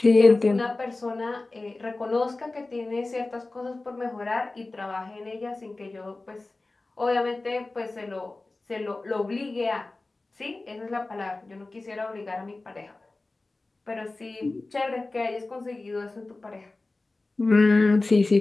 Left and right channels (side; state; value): right; quieter; 3.2 dB